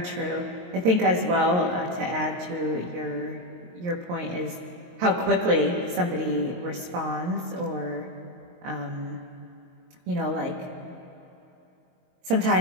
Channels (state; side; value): late; left; 22 ms